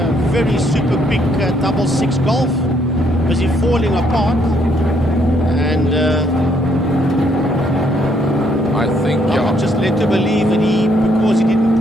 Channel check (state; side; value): normal; both; correlation 0.70